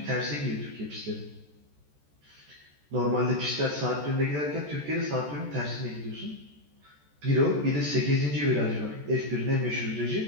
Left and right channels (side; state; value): left; late; 14 ms